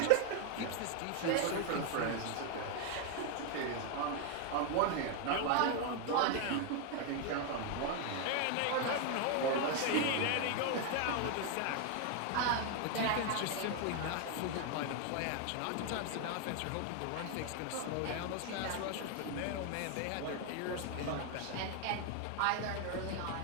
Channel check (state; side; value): different; both; correlation 0.01